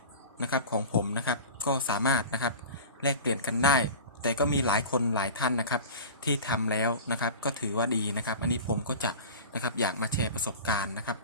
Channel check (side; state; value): both; inverted; correlation -0.34